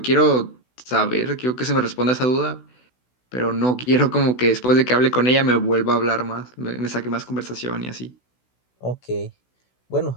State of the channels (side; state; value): right; late; 16 ms